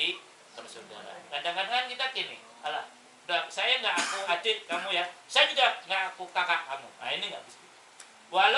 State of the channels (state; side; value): identical; both; correlation 1.00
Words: persaudaraan. Kadang-kadang kita gini, alah, saya nggak aku adik kamu ya, saya juga nggak aku kakak kamu. Nah, ini nggak bisa.